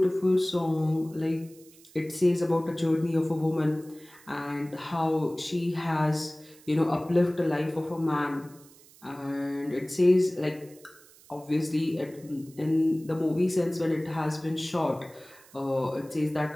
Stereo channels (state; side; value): noise; right; hiss, 25 dB below the sound